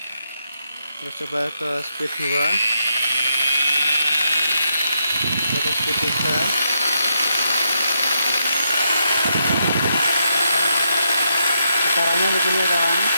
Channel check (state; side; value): inverted; both; correlation -0.80